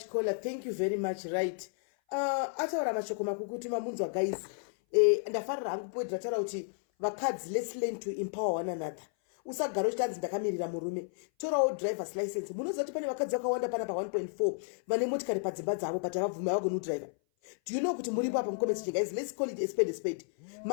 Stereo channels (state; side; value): silent; right; 56 dB below the other